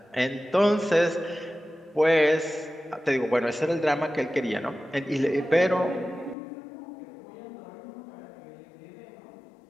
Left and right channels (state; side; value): drops out; right; at 6.4 s